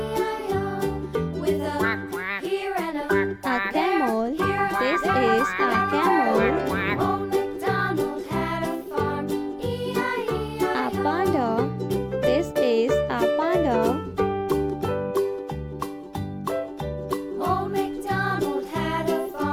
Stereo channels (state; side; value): identical; both; correlation 1.00